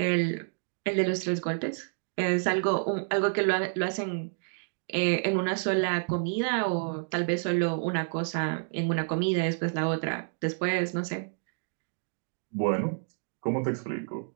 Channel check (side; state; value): left; silent; digital silence